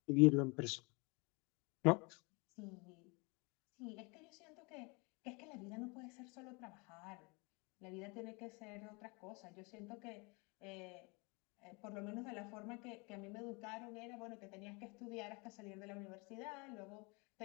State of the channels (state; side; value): quieter; right; 29.4 dB